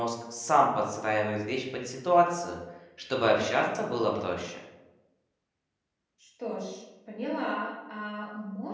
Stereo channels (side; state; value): both; identical; correlation 1.00